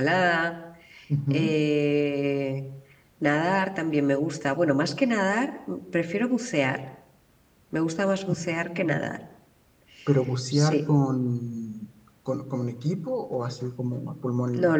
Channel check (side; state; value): both; identical; correlation 1.00